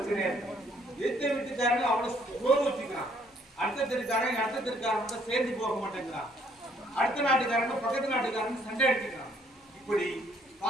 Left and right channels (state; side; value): normal; both; correlation 0.65